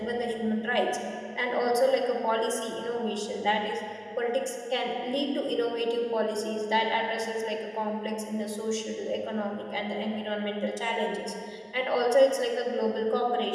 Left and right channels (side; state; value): both; identical; correlation 1.00